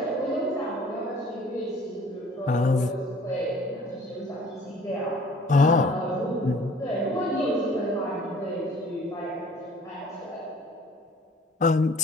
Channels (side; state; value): both; normal; correlation 0.52